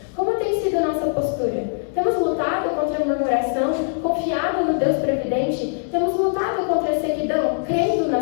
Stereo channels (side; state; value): right; silent; digital silence